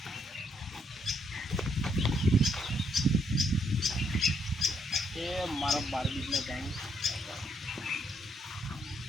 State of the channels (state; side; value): normal; both; correlation 0.74